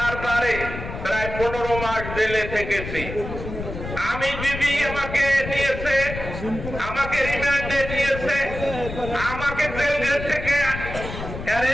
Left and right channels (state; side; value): noise; left; rumble, 8 dB below the sound